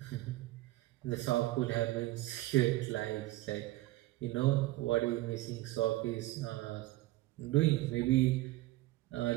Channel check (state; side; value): quieter; left; 17.7 dB